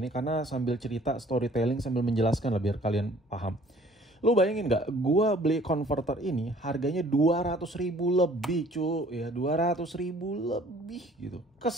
karena sambil cerita storytelling sambil menjelaskan lah biar kalian paham. Lu bayangin nggak? Gua beli konverter ini harganya 200.000 lebih cu, ya 200.000 lebih gitu.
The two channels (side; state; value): both; normal; correlation 0.54